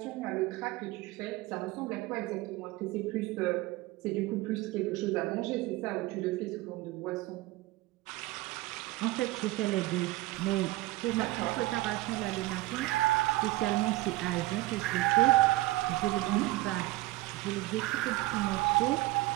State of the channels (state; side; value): quieter; left; 18.6 dB